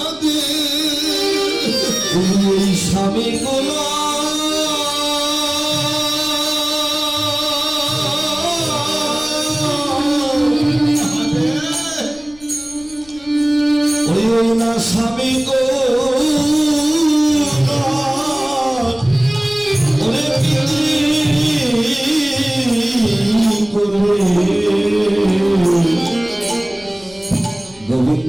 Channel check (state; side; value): noise; left; rumble, 25 dB below the sound